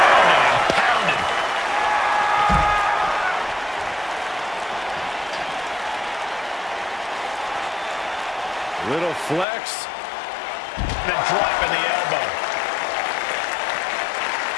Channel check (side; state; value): right; drops out; at 9.5 s